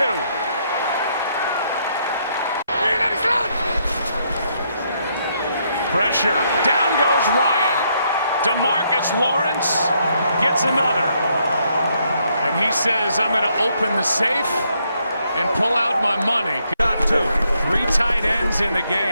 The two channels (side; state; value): both; inverted; correlation -0.74